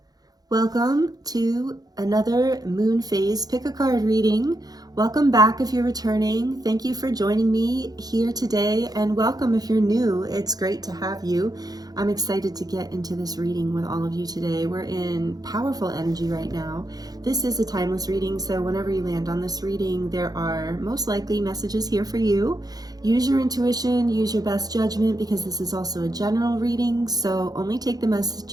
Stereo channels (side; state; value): left; late; 0.19 ms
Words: Welcome to another moon phase pick a card reading. Welcome back if you're returning. Thank you for joining me here today, and welcome if you're new. It's great to have you. I'm excited to get into this reading with all of you today. We're in powerful energy right now. This is a timeless reading, so whenever you land on this reading, there are most likely messages here for you. Use your intuition, use your best judgment, because this is also a general reading, so only take the